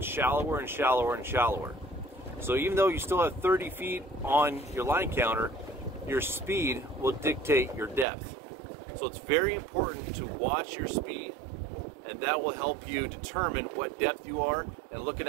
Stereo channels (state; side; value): drops out; left; at 8.1 s